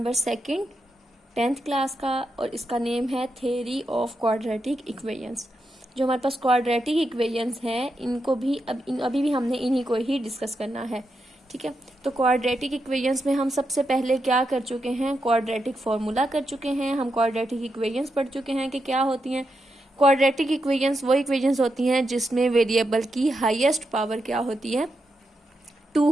2 10th क्लास का, और इसका नेम है थ्योरी ऑफ क्वाड्रेटिक इक्वेशंस। जो हमारे पास क्वाड्रेटिक इक्वेशंस हैं इनको भी अभी भी हमने इन्हीं को ही डिस्कस करना है। ठीक है, तो क्वाड्रेटिक इक्वेशंस में हम सबसे पहले क्या कर चुके हैं, क्वाड्रेटिक फॉर्मूला कर चुके हैं। हम क्वाड्रेटिक इक्वेशंस पढ़ चुके हैं कि क्या होती हैं। क्वाड्रेटिक इक्वेशंस वो इक्वेशंस होती हैं जिसमें वेरिएबल की हाईएस्ट पावर क्या होती है,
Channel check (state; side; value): normal; both; correlation 0.85